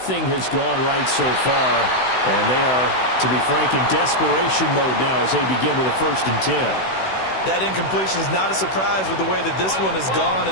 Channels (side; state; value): right; late; 16 ms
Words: has gone right so far And they are, to be frank, in desperation mode now as they begin with a 1st and 10. That incompletion is not a surprise with the way that this one has gone,